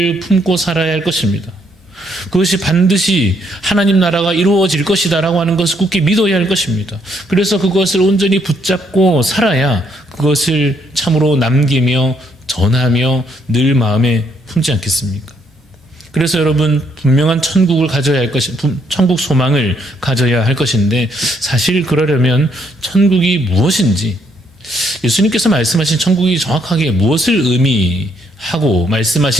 품고 살아야 할 것입니다. 그것이 반드시 하나님 나라가 이루어질 것이다 라고 하는 것을 굳게 믿어야 할 것입니다. 그래서 그것을 온전히 붙잡고 살아야 그것을 참으로 남기며 전하며 늘 마음에 품지 않겠습니까? 그래서 여러분, 분명한 천국을 가져야 할 것이, 천국 소망을 가져야 할 것인데, 사실 그러려면 천국이 무엇인지, 예수님께서 말씀하신 천국이 정확하게 무엇을 의미하고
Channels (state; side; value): normal; both; correlation 0.72